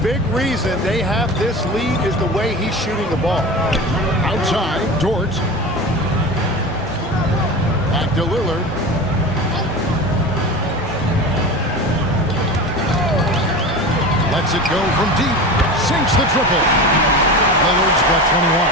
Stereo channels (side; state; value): both; normal; correlation 0.30